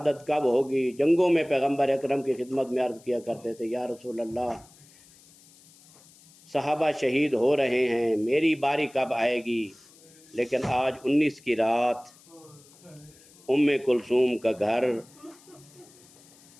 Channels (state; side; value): noise; left; hiss, 26 dB below the sound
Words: کب ہوگی، جنگوں میں پیغمبر اکرم کی خدمت میں عرض کیا کرتے تھے، یا رسول اللہ، صحابہ شہید ہو رہے ہیں، میری باری کب آئے گی؟ لیکن آج 19 کی رات ام کلثوم کا گھر،